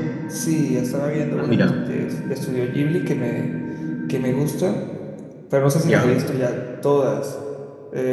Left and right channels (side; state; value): both; identical; correlation 1.00